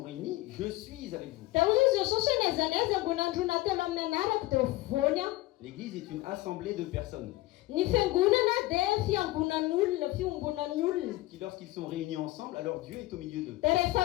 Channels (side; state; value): right; quieter; 18.4 dB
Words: réunis, je suis avec vous. Dia ozy izy Jesosy hoe naizanaiza ambony androna telo amin'ny anarako dia voany aho. L'église est une assemblée de personnes Ny fiangonana dia fiangonan'olona, fiombonan'ny olona. qui, lorsqu'ils sont réunis ensemble, alors Dieu est au milieu d'eux. Dia rehefa